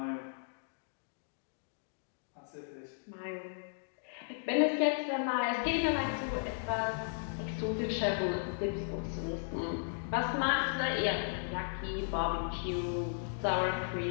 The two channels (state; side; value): silent; right; digital silence